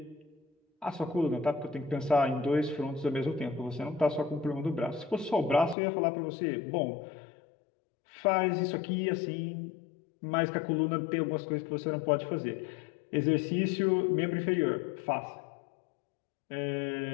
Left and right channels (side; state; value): right; drops out; at 5.8 s